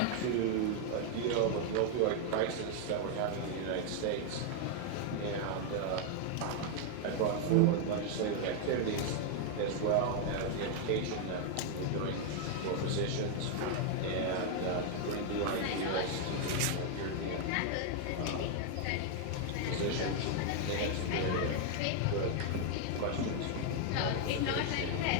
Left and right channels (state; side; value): different; both; correlation 0.00